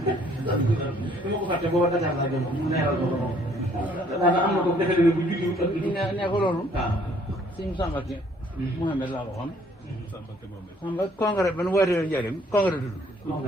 dama ko fàtte booba Dakar laa jëm mu neeral ko moom daanaka am na ko defe ne bu juddu ak ne ko loolu sëñ Samba Ki Mouhamed laa waxoon Samba congrès ban wootee njëriñ congrès tudd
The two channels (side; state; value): both; normal; correlation 0.62